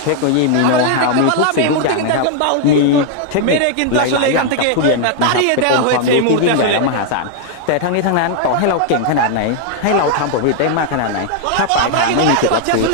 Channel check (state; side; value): different; both; correlation 0.00